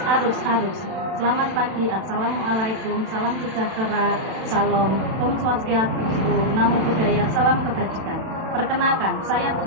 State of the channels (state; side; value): late; left; 32 ms